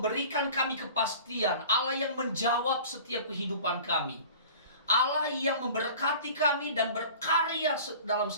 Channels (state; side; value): inverted; both; correlation -0.43